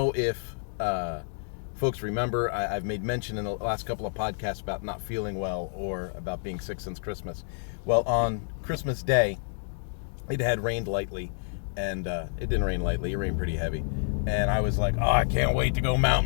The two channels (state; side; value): silent; right; digital silence